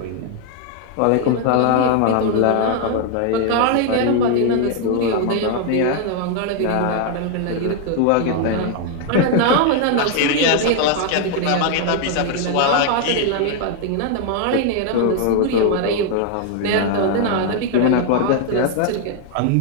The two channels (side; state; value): both; different; correlation 0.00